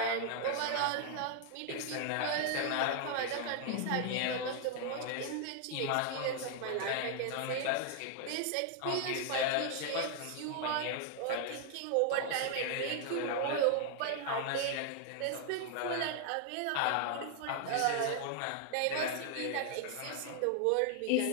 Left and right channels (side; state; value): both; different; correlation 0.00